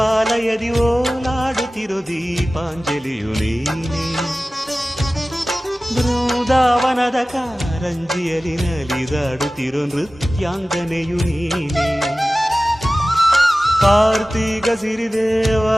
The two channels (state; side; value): normal; both; correlation 0.97